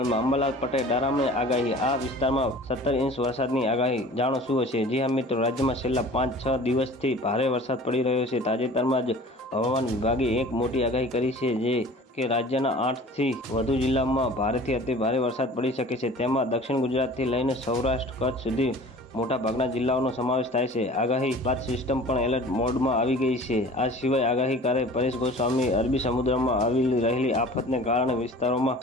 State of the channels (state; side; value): normal; both; correlation 0.44